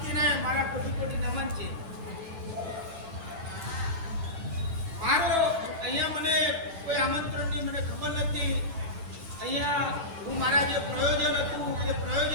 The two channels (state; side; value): late; left; 9.2 ms